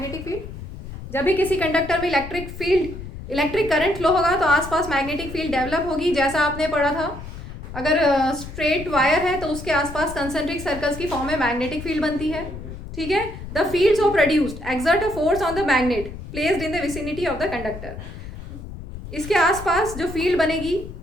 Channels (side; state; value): left; noise; rumble, 11 dB below the sound